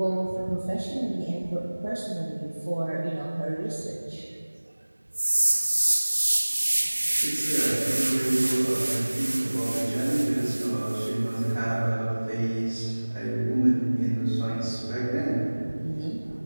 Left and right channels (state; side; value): inverted; both; correlation -1.00